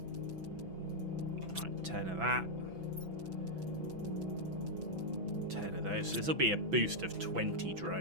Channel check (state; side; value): late; left; 6.0 ms